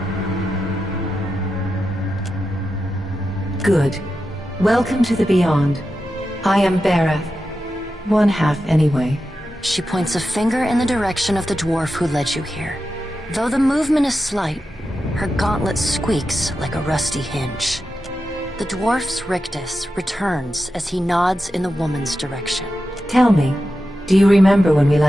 Good. Welcome to the Beyond. I am Berath. One half, anyway. She points a finger in the direction of the dwarf who led you here. Though the movement is slight, her gauntlet squeaks like a rusty hinge. The dwarf's rictus returns as he nods in the woman's direction. Tell me, do you remember when we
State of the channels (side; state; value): both; normal; correlation 0.90